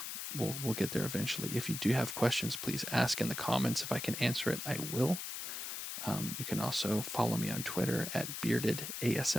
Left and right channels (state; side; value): noise; left; hiss, 5 dB below the sound